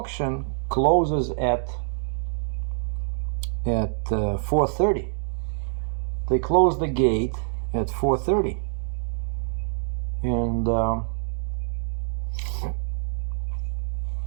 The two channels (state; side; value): silent; left; digital silence